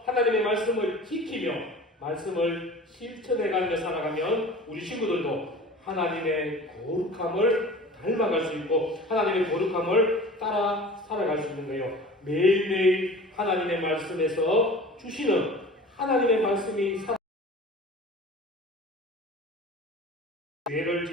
하나님의 말씀을 지키며 말씀을 실천해가며 살아가면 우리 친구들도 하나님의 거룩함을 닮아갈 수 있고 하나님의 거룩함을 따라 살아갈 수 있는 거예요. 매일매일 하나님의 말씀에서 주시는 하나님의 말씀이 죄를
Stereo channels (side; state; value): both; normal; correlation 0.41